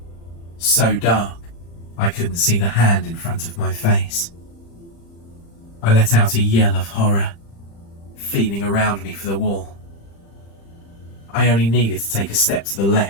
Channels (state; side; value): late; right; 35 ms